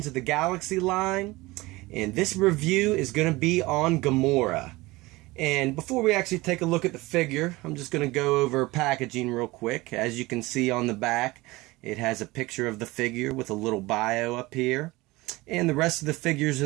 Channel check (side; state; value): left; quieter; 21.1 dB